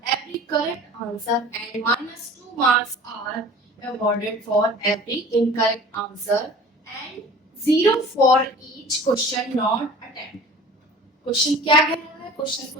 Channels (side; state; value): both; normal; correlation 0.44